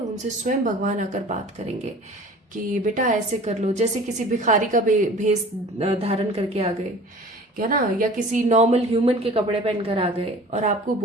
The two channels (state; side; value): normal; both; correlation 0.44